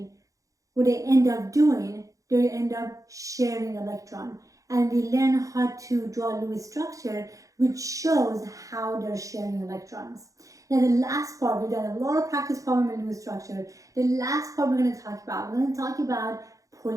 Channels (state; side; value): late; left; 0.16 ms